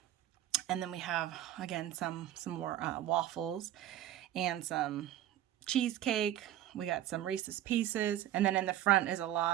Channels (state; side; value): quieter; left; 12.5 dB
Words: And then we have, again, some more waffles and some cheesecake. We got some Reese's Pieces, and then in the front is a